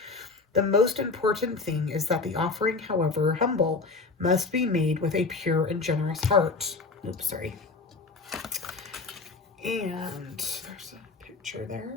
The most important thing is that the offering, however humble, must be made with a pure and generous heart. Oops, sorry. And there's a picture there.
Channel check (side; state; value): right; quieter; 4.0 dB